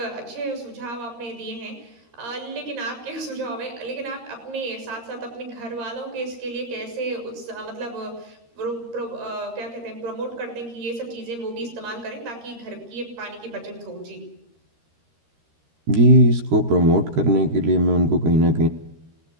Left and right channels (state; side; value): late; left; 13 ms